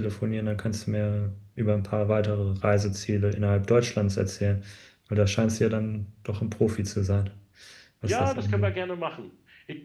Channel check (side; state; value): both; identical; correlation 1.00